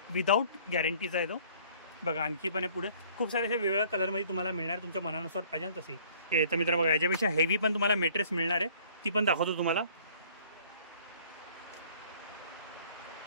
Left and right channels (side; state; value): both; inverted; correlation -0.55